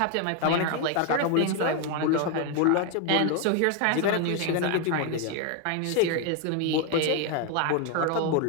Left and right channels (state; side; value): different; both; correlation 0.01